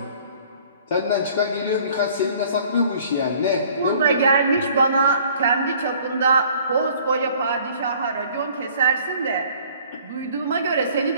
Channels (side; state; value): both; inverted; correlation -0.54